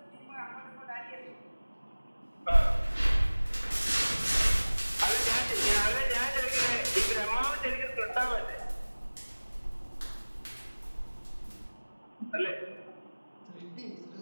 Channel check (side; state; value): both; inverted; correlation -1.00